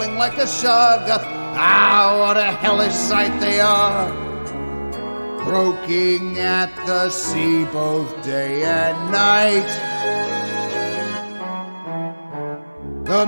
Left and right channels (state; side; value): inverted; both; correlation -1.00